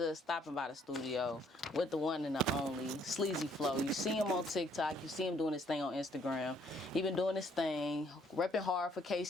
of stopping by the studio with the one and the only, Sleazy Flow. You see him on TikTok. You see him doing his thing on Instagram. He been doing his thing, repping hard for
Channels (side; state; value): both; normal; correlation 0.65